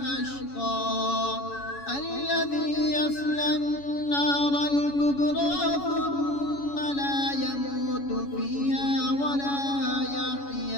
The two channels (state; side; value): late; right; 7.1 ms